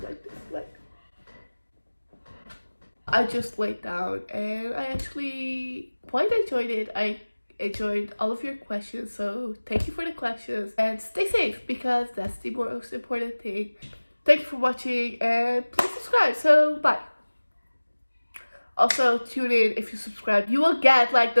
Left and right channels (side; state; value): both; inverted; correlation -1.00